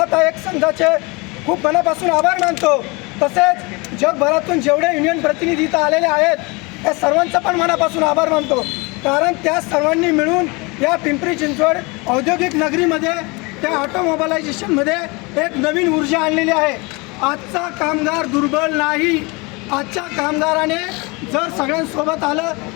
संघाचे खूप मनापासून आभार मानतो। तसेच जगभरातून जेवढे युनियन प्रतिनिधी इथं आलेले आहेत त्या सर्वांचा पण मनापासून आभार मानतो, कारण त्या सर्वांनी मिळून या पिंपरी चिंचवड औद्योगिक नगरीमध्ये, त्या ऑटोमोबालायझेशनमध्ये एक नवीन ऊर्जा आणलेली आहे। आजचा कामगार दुर्बल नाही। आजच्या कामगाराने जर सगळ्यांसोबत आलं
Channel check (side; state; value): right; quieter; 27.0 dB